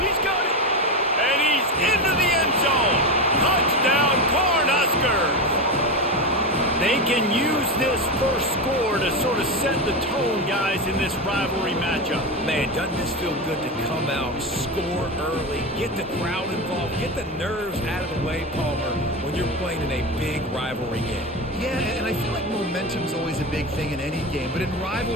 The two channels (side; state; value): both; normal; correlation 0.18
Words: got it! And he's into the end zone! Touchdown, Cornhuskers! They can use this first score to sort of set the tone, guys, in this rivalry matchup. Man, doesn't this feel good to come out, score early, get the crowd involved, get the nerves out of the way, Palmer, when you're playing in a big rivalry game? Yeah, and I feel like momentum's always a big thing in any game, but in